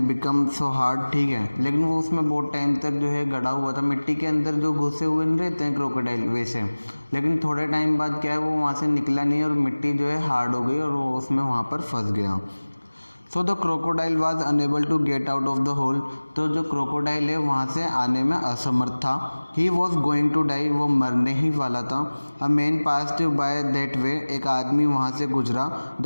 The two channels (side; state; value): both; inverted; correlation -1.00